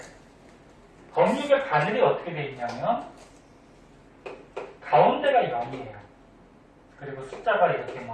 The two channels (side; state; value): both; identical; correlation 1.00